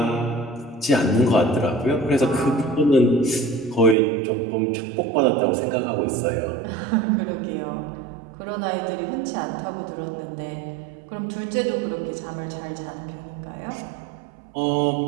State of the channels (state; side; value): drops out; left; at 4.0 s